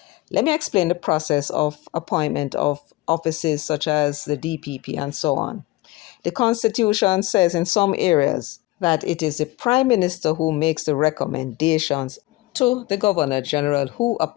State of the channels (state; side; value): quieter; right; 20.4 dB